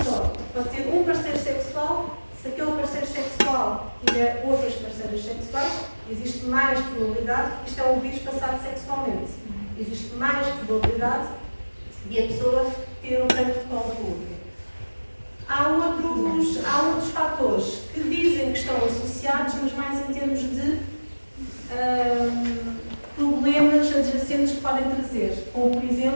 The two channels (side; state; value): both; inverted; correlation -1.00